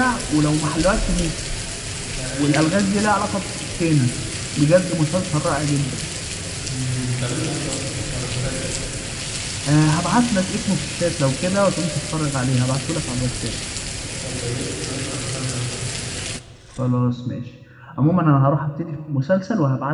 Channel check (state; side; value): identical; both; correlation 1.00